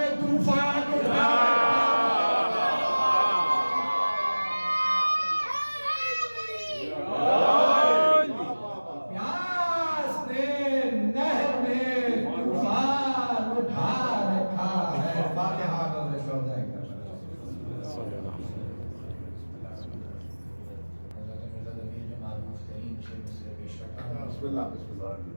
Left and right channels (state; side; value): inverted; both; correlation -1.00